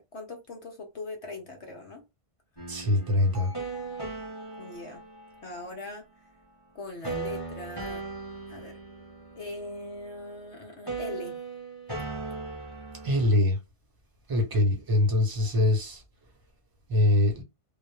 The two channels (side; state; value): right; late; 1.5 ms